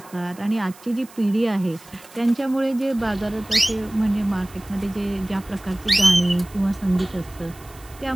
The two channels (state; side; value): noise; right; hiss, 22 dB below the sound